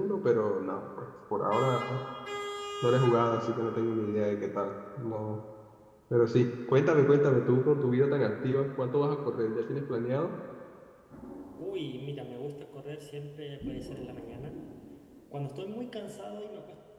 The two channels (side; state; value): both; identical; correlation 1.00